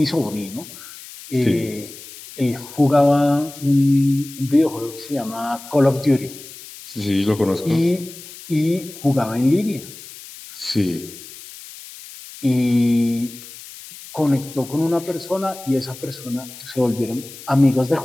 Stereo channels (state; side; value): noise; left; hiss, 16 dB below the sound